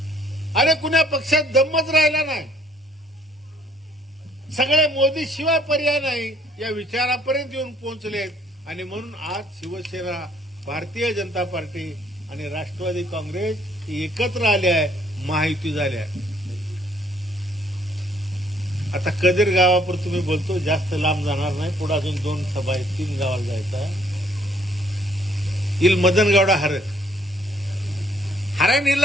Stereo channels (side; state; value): both; normal; correlation 0.63